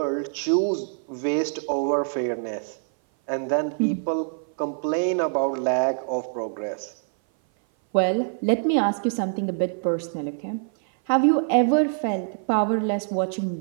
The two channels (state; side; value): silent; left; 58 dB below the other